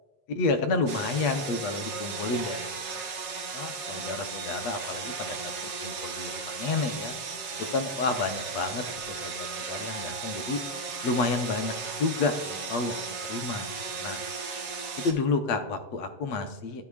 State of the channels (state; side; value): late; right; 7.4 ms